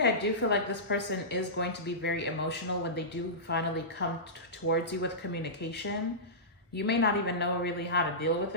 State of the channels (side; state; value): both; normal; correlation -0.17